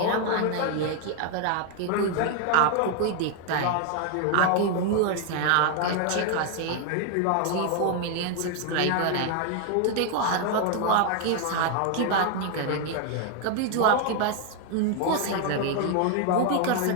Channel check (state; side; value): different; both; correlation 0.00